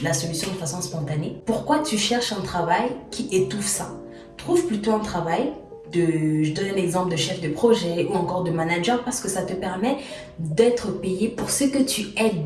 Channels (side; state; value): both; identical; correlation 1.00